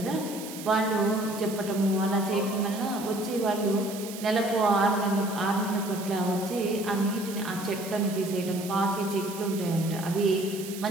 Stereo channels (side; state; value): right; noise; hiss, 12 dB below the sound